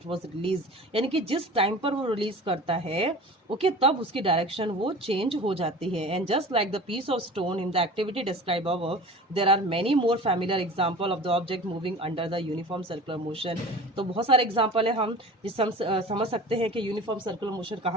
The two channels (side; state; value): both; normal; correlation 0.38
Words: was release. यानी कि जिस टाइम पर वो रिलीज करता है ओके, तब उसकी डायरेक्शन वो चेंज हो जाती है। And just like the piece of stone in the activity describe above, there are many more familiar example of the object moving under the uniform circular motion. तो बहुत सारे एग्जांपल है हम जिससे हम समझ सकते हैं कि यूनिफॉर्म सर्कुलर मोशन